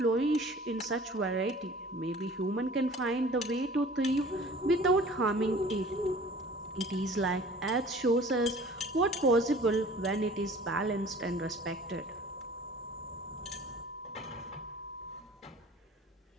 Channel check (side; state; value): both; normal; correlation 0.47